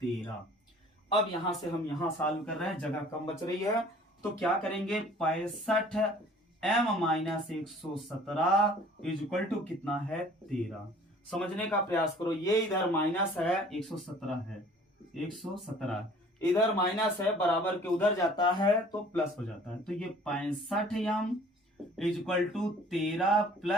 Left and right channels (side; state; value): both; normal; correlation 0.51